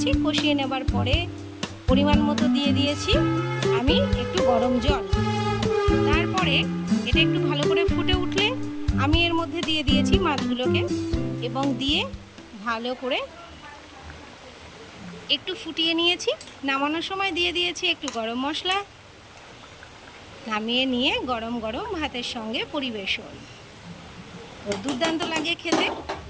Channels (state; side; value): identical; both; correlation 1.00